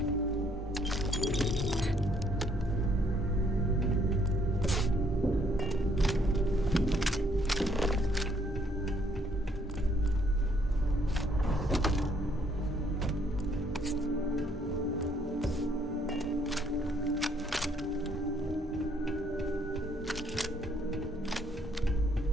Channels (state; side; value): normal; both; correlation 0.67